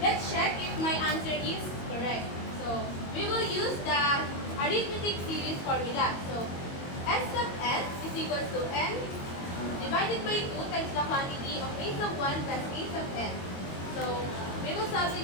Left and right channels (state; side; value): late; right; 22 ms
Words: let's check if my answer is correct. So, we will use the arithmetic series formula. So, S sub n is equals to n divided by 2 times the quantity of a sub 1 plus a sub n. So, we will